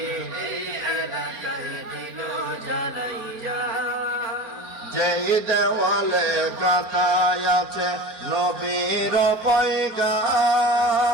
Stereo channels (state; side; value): late; left; 4.4 ms